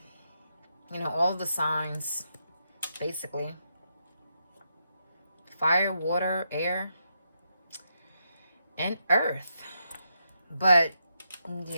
You know, all the signs, basically. Fire, water, air, and earth. But,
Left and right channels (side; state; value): both; inverted; correlation -0.82